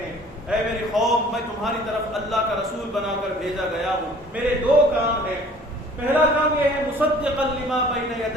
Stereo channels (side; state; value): both; normal; correlation 0.51